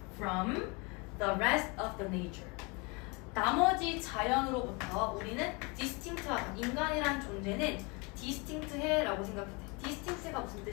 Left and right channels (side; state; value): right; quieter; 28.5 dB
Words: from the rest of the nature. 나머지 자연으로부터 우리는 distinct하다. 인간이란 존재는 distinct해라고 생각했대. distinct가 무슨